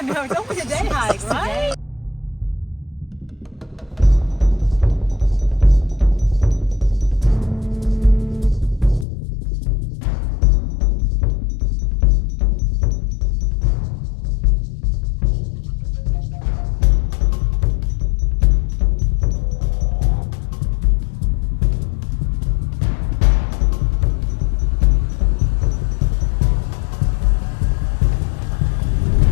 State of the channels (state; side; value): drops out; right; at 9.1 s